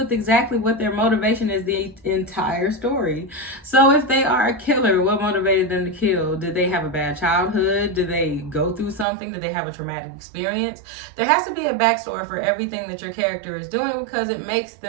exactly what their motivation is the entire story. So if they are a killer, what motivated them to kill? Did they have a bad childhood? Did they go through something? Did they have a traumatic experience? There has to be a backstory for everything that your character is doing, because it makes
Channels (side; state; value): left; drops out; at 9.1 s